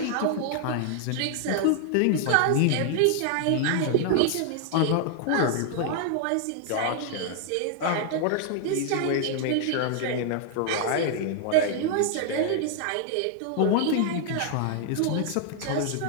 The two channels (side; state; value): both; different; correlation 0.00